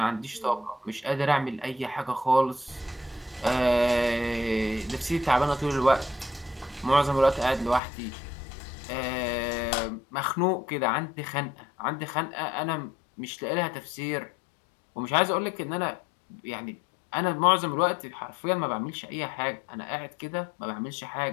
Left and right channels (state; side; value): drops out; right; at 7.8 s